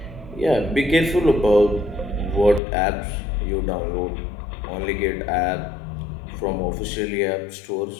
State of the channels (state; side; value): drops out; right; at 2.6 s